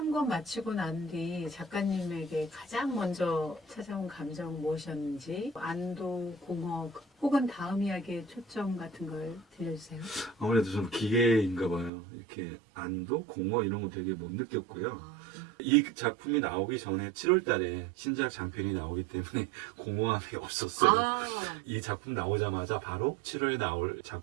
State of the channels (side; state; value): left; drops out; at 11.9 s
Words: 권 마치고 난 뒤 작가님에게 가장 먼저 찾아온 감정 무엇이었는지, 안도, 공허, 혹은 다음 이야기의 초점 같은 걸 들려주세요. 아무래도 좀 기계인가 봐요. 이렇게 안도, 공허 이런 거 되게 못 느꼈고요. 아, 이 작품이 나오기 전에 7월 달에 신작 장편이 나오기 때문에 공허함이 없었어요. 아, 이 작품 나오자마자 바로 7월에 나올